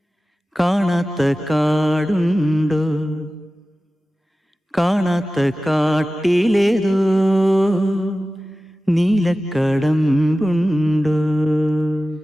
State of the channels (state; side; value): normal; both; correlation 0.95